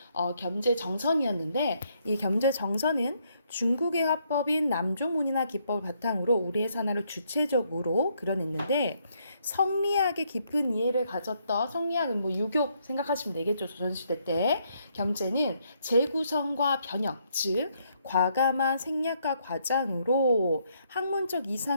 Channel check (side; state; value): both; inverted; correlation -0.73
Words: 겸재정선이었는데 이 겸재정선은 중국의 화법인 남조문이나 기법을 바탕으로 우리의 산화를 주체적으로 그려냈는데 성리학의 깊은 이해를 가졌던 성리학은 유교 생각하시면 되겠죠. 조선시대 때 겸재는 재구성과 변형, 즉 과감한 생략과 과장으로 학문적